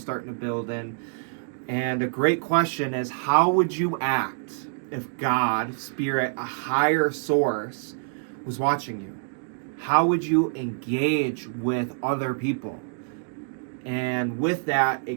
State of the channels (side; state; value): left; silent; digital silence